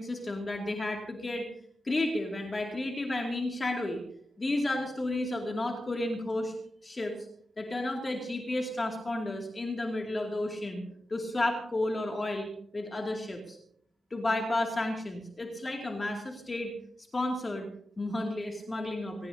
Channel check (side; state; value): both; normal; correlation 0.92